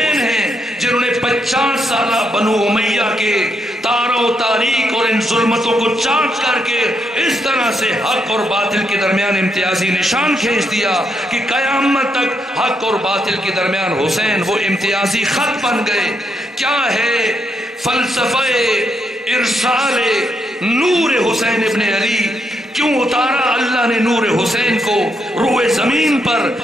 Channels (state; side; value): normal; both; correlation 0.79